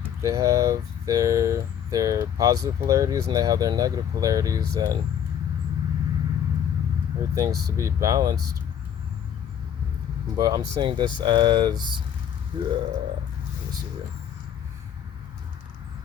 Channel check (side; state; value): right; quieter; 9.1 dB